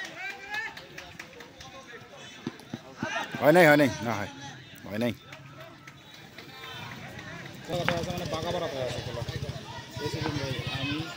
হয় নাই না হয় নাই মানে বাঘা বাড়া আছে আমি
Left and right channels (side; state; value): both; identical; correlation 1.00